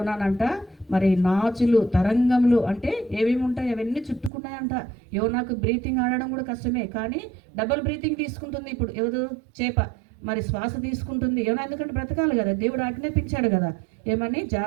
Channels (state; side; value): drops out; left; at 4.3 s